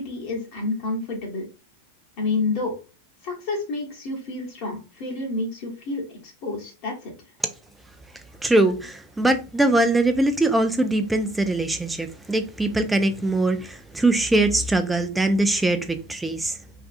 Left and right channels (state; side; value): normal; both; correlation 0.65